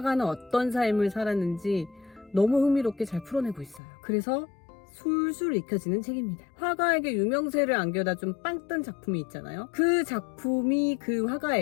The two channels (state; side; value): drops out; right; at 3.8 s